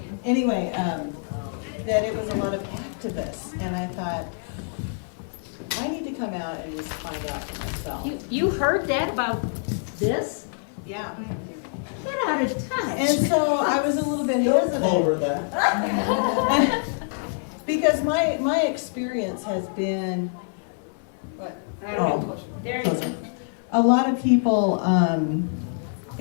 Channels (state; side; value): silent; right; digital silence